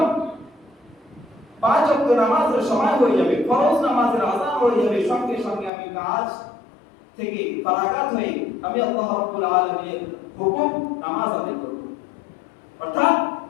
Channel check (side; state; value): right; drops out; at 5.7 s